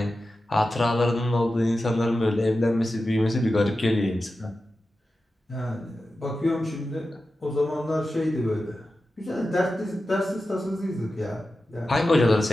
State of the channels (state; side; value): normal; both; correlation 0.92